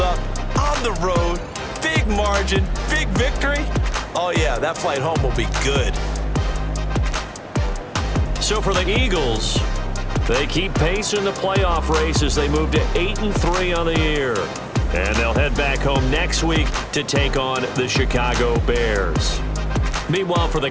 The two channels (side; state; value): both; identical; correlation 1.00